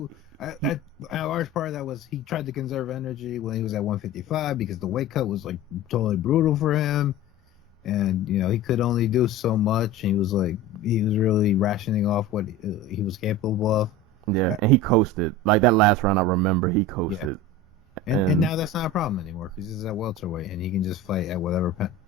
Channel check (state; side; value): normal; both; correlation 0.32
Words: large part of that was he tried to conserve energy when he was at 155 because the weight cut was like totally brutal for him, and he could only do so much. And he was really rationing off what he was capable of. Yeah, and he coasted. Like that last round, I remember he coasted. Yeah. And now that's not a problem anymore because he's at welterweight and he can just fight at whatever